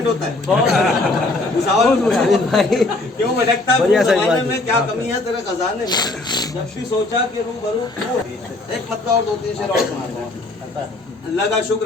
होता है। क्यों भटकता फिरूं ज़माने में, क्या कमी है तेरे खजाने में। जब भी सोचा कि रूबरू तू, एक मतलब और 2-3 शेर और सुनाता हूँ। अल्लाह का शुक्र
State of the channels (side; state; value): right; quieter; 3.0 dB